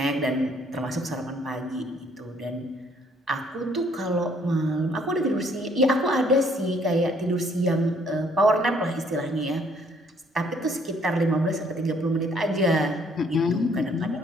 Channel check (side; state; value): both; normal; correlation 0.63